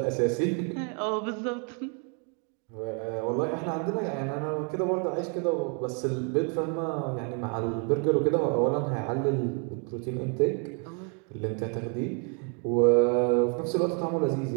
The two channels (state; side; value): quieter; left; 38.8 dB